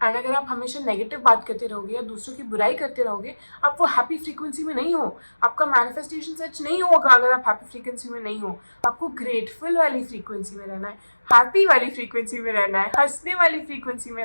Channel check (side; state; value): both; inverted; correlation -1.00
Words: एंड अगर आप हमेशा नेगेटिव बात करते रहोगे या दूसरों की बुराई करते रहोगे, आप वो हैप्पी फ्रीक्वेंसी में नहीं हो, आपका मैनिफेस्टेशन सच नहीं होगा। अगर आप हैप्पी फ्रीक्वेंसी में नहीं हो, आपको ग्रेटफुल वाली फ्रीक्वेंसी में रहना है, हैप्पी वाली फ्रीक्वेंसी में रहना है, हंसने वाली फ्रीक्वेंसी में